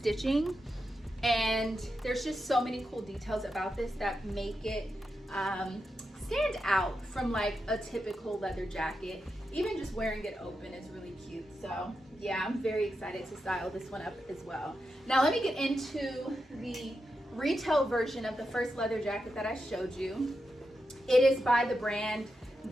and there's just so many cool details about this that make it stand out from like a typical leather jacket. Even just wearing it open is really cute. So yeah, I'm very excited to style this one up as well. Now let me get into the retail version of the first leather jacket that I showed you. It is by the brand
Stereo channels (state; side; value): normal; both; correlation 0.87